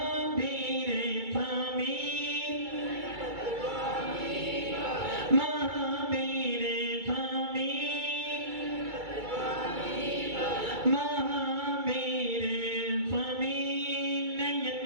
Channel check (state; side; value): late; left; 2.3 ms